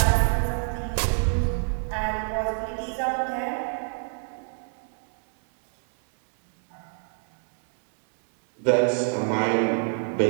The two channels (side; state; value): left; silent; digital silence